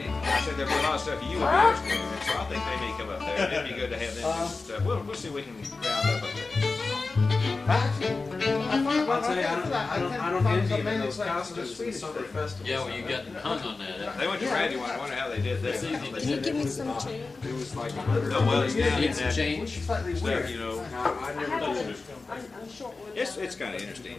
I said there'd be a lot of stuff you would be interested in. So I think they may come up there. It'd be good to have them do some stuff. We'll see if we can round up a bit. I'll tell you, I don't envy him in those costumes in the summer festival. Yeah, well, you got hung on that. They went to Randy one. I wonder how they did that. Can you give me some change? It was like No, well, it's down in Need some that change. stuff, you know. I never did it. I'm short one. It's kind of interesting,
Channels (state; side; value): quieter; right; 3.9 dB